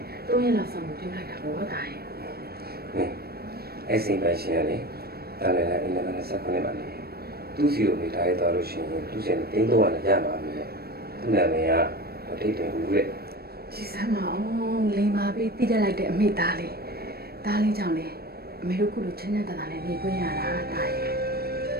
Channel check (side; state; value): left; late; 0.46 ms